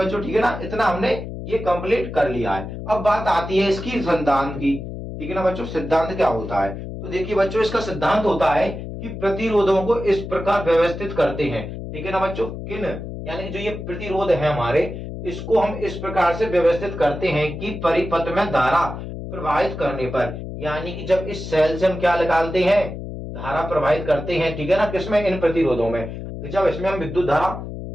ठीक है ना, इतना हमने ये कंप्लीट कर लिया है। अब बात आती है इसकी सिद्धांत की। ठीक है ना बच्चों, सिद्धांत क्या होता है, तो देखिए बच्चों, इसका सिद्धांत होता है कि प्रतिरोधों को इस प्रकार व्यवस्थित करते हैं। ठीक है ना बच्चों, किन, यानी जो ये प्रतिरोध है हमारे, इसको हम इस प्रकार से व्यवस्थित करते हैं कि परिपथ में धारा प्रवाहित करने पर, यानी कि जब इस सेल से हम क्या निकालते हैं, धारा प्रवाहित करते हैं। ठीक है ना, किसमें, इन प्रतिरोधों में, जब इसमें हम विद्युत धारा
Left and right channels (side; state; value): left; noise; hum, 8 dB below the sound